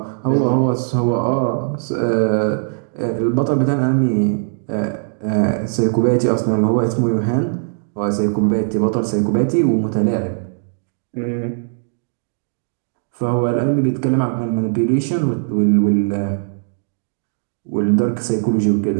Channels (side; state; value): left; silent; digital silence